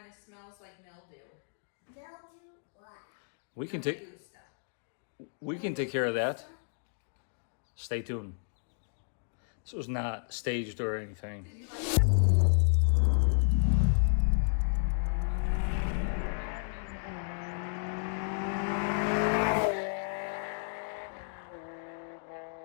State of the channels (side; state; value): right; silent; digital silence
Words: of smells like mildew. Mildew what? We can Mildew stuff. take care of that. Stay tuned. This was not staged or anything.